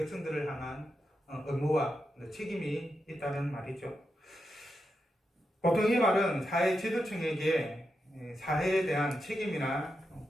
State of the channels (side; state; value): both; normal; correlation 0.87